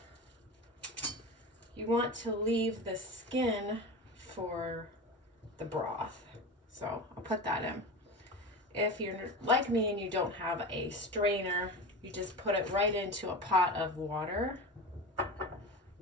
you want to leave the skin for the broth. So I'll put that in. If you're like me and you don't have a strainer, you just put it right into a pot of water.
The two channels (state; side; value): normal; both; correlation 0.28